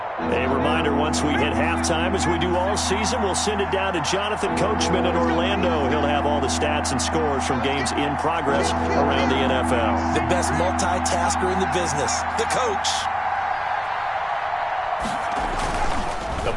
Once we hit halftime, as we do all season, we'll send it down to Jonathan Coachman in Orlando. He'll have all the stats and scores from games in progress around the NFL. The best multitasker in the business, the coach. The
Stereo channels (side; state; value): both; identical; correlation 1.00